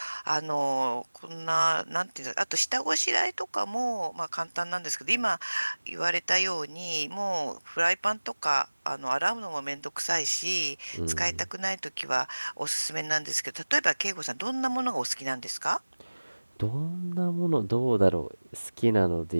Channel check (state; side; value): inverted; both; correlation -1.00